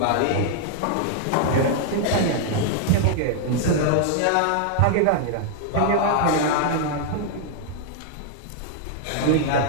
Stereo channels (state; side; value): different; both; correlation 0.00